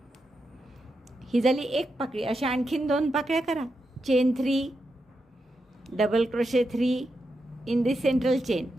ही झाली एक पाकळी. अशा आणखीन 2 पाकळ्या करा. Chain 3 double crochet 3 in the central chain,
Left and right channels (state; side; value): normal; both; correlation 0.86